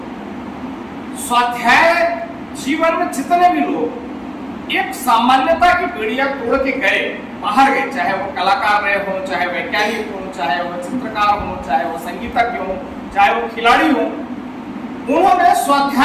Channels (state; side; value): identical; both; correlation 1.00